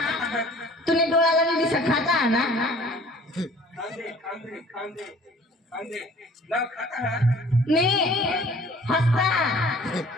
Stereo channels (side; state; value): both; normal; correlation 0.51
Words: तुने डोळ्याला नाही दिसत खाता ना मी हसता